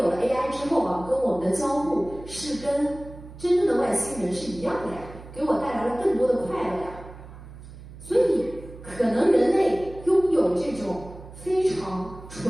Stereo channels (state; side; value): noise; right; hum, 16 dB below the sound